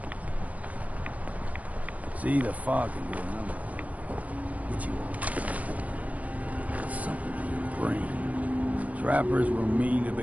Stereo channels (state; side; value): late; left; 0.070 ms